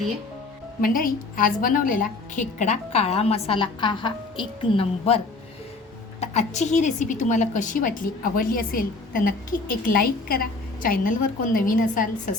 आहे. मंडळी, आज बनवलेला खेकडा काळा मसाला आहा एक नंबर. तर आजची ही रेसिपी तुम्हाला कशी वाटली, आवडली असेल तर नक्की एक लाईक करा. चॅनलवर कोण नवीन असाल,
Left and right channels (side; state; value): right; quieter; 3.5 dB